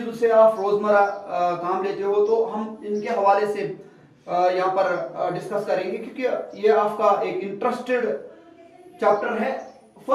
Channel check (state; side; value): identical; both; correlation 1.00